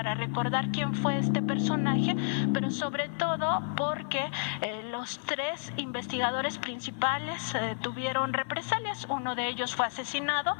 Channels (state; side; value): silent; right; 57 dB below the other